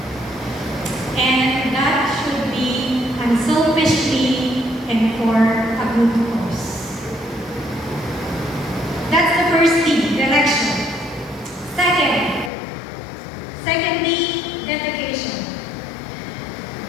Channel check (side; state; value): right; drops out; at 12.5 s